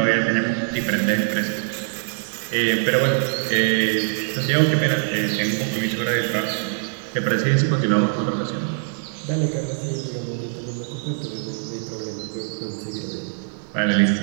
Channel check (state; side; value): silent; left; 63 dB below the other